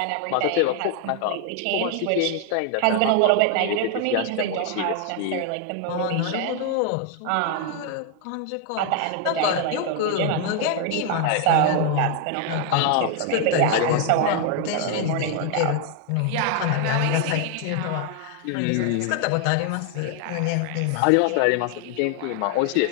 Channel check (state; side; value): different; both; correlation 0.00